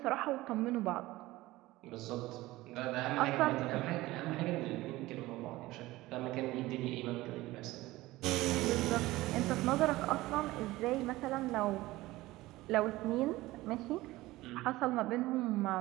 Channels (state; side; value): quieter; left; 18.3 dB